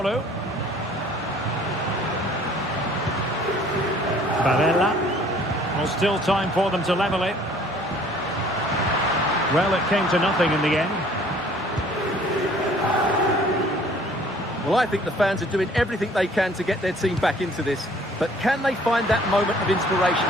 Barella. Well, still time for them to level it. Well, it came to nothing in the end. Well, I think the fans are doing everything they can to get their team back into this. But can they find that moment of inspiration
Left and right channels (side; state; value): both; normal; correlation 0.55